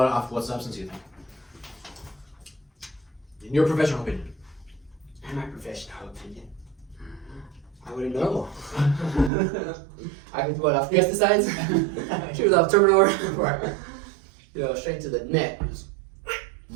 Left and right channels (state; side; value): drops out; left; at 9.3 s